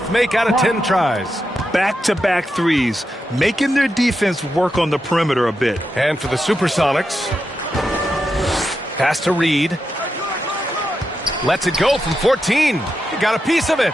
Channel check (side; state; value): both; normal; correlation 0.87